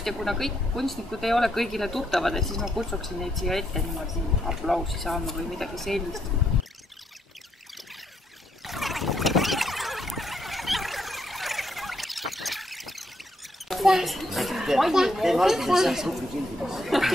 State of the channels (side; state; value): both; normal; correlation 0.76